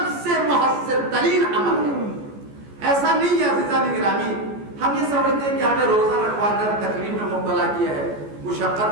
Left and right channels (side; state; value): left; late; 14 ms